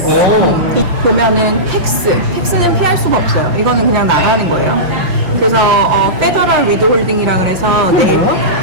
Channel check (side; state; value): left; late; 5.8 ms